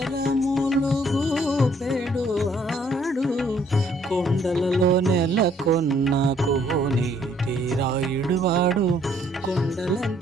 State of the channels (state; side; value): normal; both; correlation 0.65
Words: గూపెడు వాడు. కొండలలో నెలకొన్న కోనేటి రాయుడు వాడు,